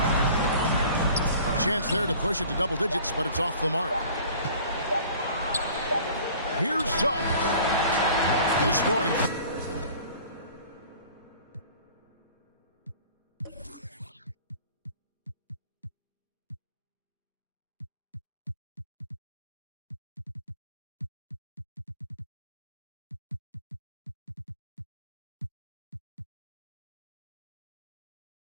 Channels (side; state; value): both; inverted; correlation -0.47